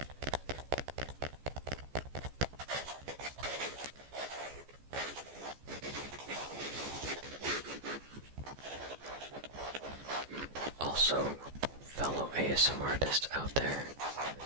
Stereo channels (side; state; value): left; late; 14 ms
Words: Also, fellow ASMR artists out there,